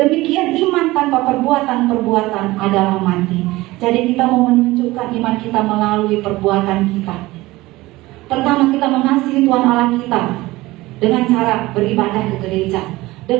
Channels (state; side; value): quieter; left; 19.3 dB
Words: iman tanpa perbuatan-perbuatan adalah mati. Jadi kita mau menunjukkan iman kita melalui perbuatan kita. Pertama, kita mengasihi Tuhan Allah kita dengan cara beribadah ke gereja,